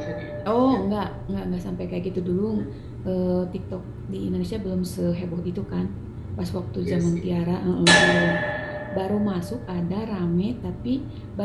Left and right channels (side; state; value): both; identical; correlation 1.00